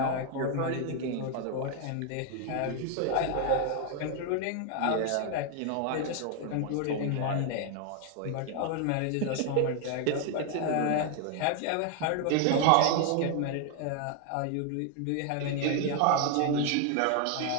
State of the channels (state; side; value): different; both; correlation 0.00